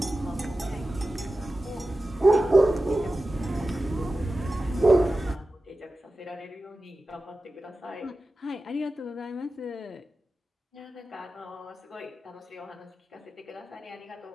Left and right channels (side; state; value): both; normal; correlation 0.94